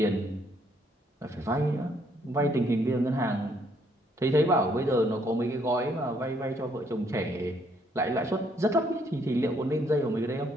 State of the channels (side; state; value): both; normal; correlation 0.69